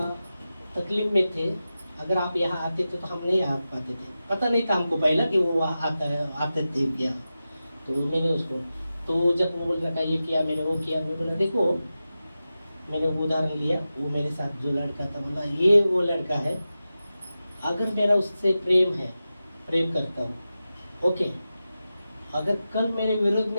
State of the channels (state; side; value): inverted; both; correlation -0.93